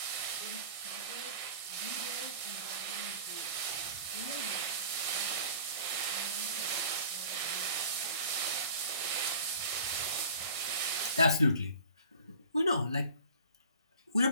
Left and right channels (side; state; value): both; inverted; correlation -0.45